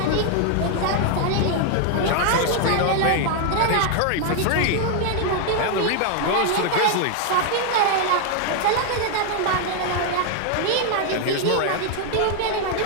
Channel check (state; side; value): different; both; correlation 0.00